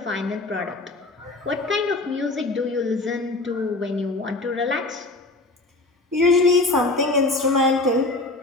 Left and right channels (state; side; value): quieter; right; 3.1 dB